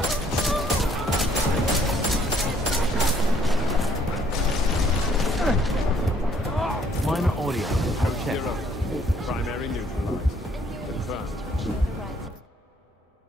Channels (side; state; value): both; normal; correlation 0.64